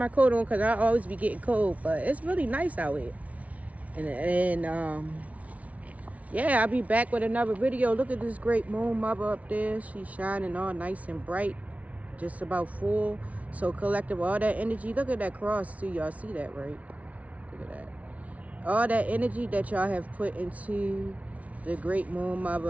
coat on because I always be getting cold, but it's really nice out here. And yeah, I'll be back with another video. Look at this great moon mother up there. She's shining all nice and bright, just about full. So collective, all that energy. Look at that cross too. Y'all see that, right? Look at that. All that energy that y'all have put into the great moon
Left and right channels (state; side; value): late; left; 0.068 ms